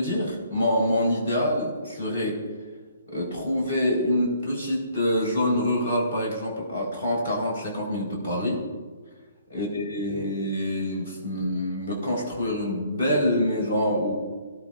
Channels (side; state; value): both; inverted; correlation -0.62